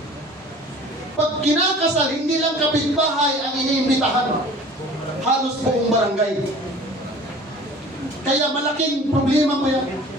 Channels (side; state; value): both; normal; correlation 0.45